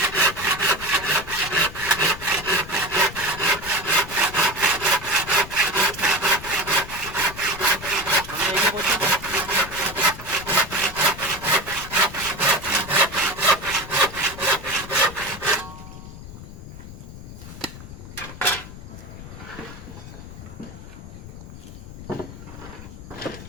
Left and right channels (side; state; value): left; noise; rumble, 13 dB below the sound